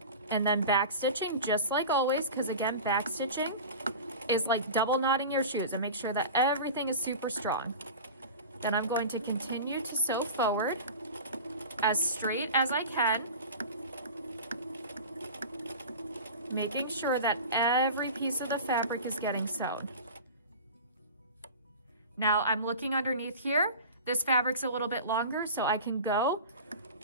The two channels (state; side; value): inverted; both; correlation -0.33